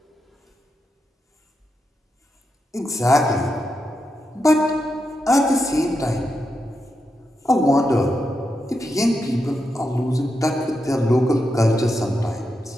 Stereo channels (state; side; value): normal; both; correlation 0.86